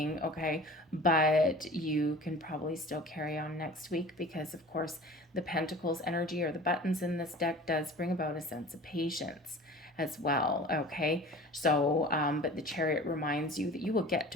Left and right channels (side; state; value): both; normal; correlation 0.41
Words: okay? But you can probably still carry on next week because, of course, the Pentacles energy or the buttons in this deck does bring about a sense of patience as well, okay? So, but the Chariot reminds you that you will get